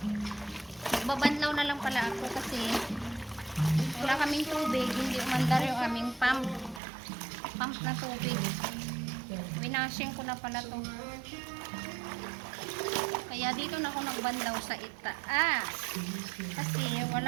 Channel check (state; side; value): drops out; left; at 6.8 s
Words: Babanlaw na lang pala ako kasi wala kaming tubig. Hindi umandar yung aming pump na tubig. Winashing ko na pala to. Kaya dito na ako nagbanlaw sa itaas. Kasi